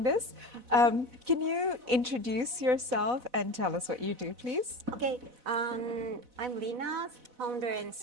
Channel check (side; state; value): left; late; 4.0 ms